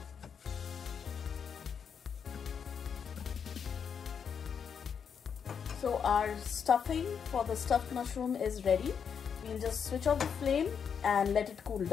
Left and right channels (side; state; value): right; quieter; 7.0 dB